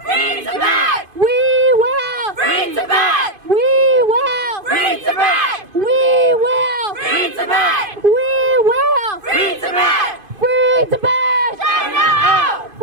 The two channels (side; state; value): left; late; 2.5 ms